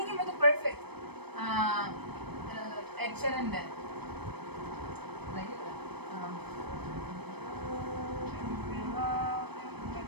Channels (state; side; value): late; left; 0.98 ms